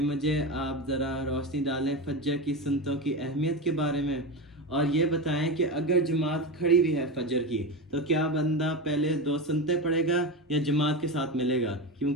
مجھے آپ ذرا روشنی ڈالیں فجر کی سنتوں کی اہمیت کے بارے میں، اور یہ بتائیں کہ اگر جماعت کھڑی بھی ہے فجر کی تو کیا بندہ پہلے 2 سنتے پڑھے گا یا جماعت کے ساتھ ملے گا؟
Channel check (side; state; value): both; normal; correlation 0.20